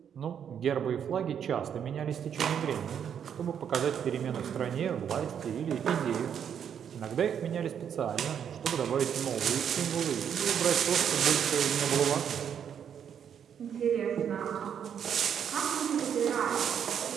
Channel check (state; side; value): quieter; left; 8.4 dB